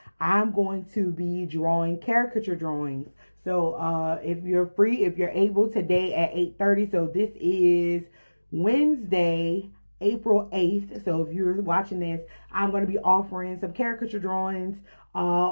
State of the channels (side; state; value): both; inverted; correlation -1.00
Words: I'm going to be drawing caricature drawings. So if you're free, if you're able, today at 8:30. So this is Wednesday, April 8th. So if you're watching this, I'm going to be offering some caricature drawings